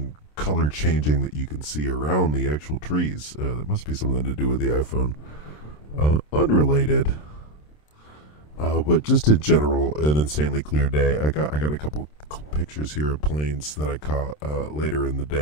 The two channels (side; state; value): right; late; 27 ms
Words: color changing that you can see around the actual trees. That must be something to do with the iPhone. Unrelated. But just in general, an insanely clear day. I got a couple pictures here of planes that I caught later in the